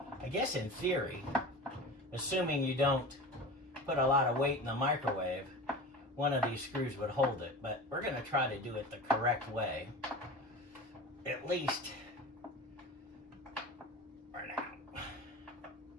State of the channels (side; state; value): both; normal; correlation 0.32